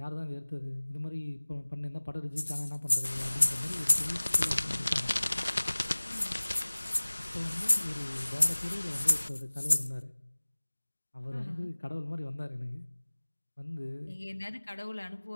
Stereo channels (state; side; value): inverted; both; correlation -1.00